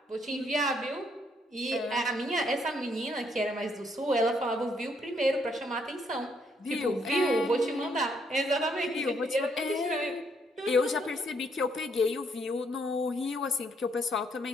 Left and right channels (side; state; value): both; normal; correlation 0.71